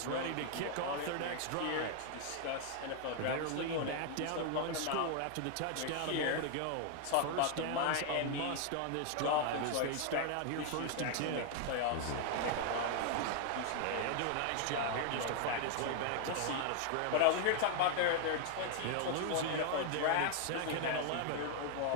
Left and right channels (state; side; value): different; both; correlation 0.00